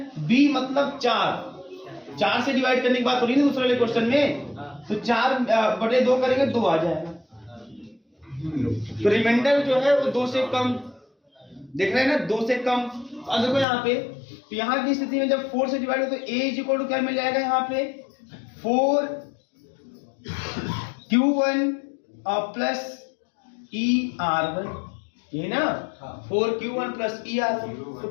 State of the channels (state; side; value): drops out; right; at 13.7 s